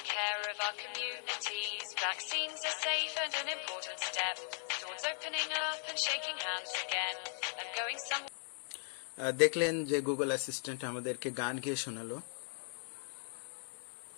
care of our communities. Vaccines are safe and an important step towards opening up and shaking hands again and going somewhere. দেখলেন যে গুগল অ্যাসিস্ট্যান্ট আমাদেরকে গান গেয়ে শোনালো।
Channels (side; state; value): right; silent; 52 dB below the other